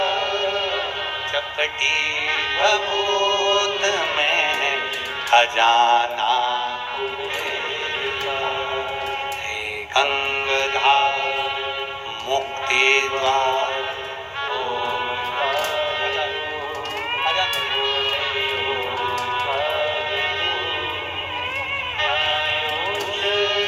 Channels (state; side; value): identical; both; correlation 1.00